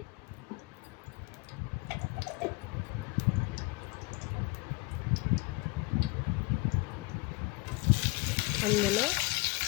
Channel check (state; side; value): quieter; right; 24.2 dB